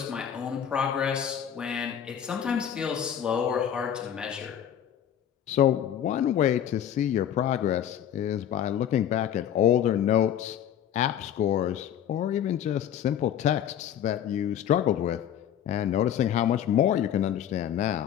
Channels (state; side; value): quieter; right; 9.8 dB